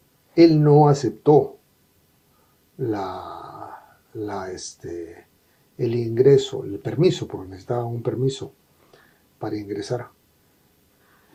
él no aceptó el ingreso, el permiso, porque necesitaba un permiso para ingresar.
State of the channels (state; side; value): identical; both; correlation 1.00